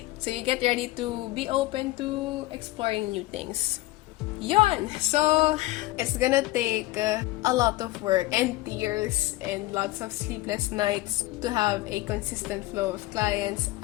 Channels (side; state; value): right; quieter; 18.2 dB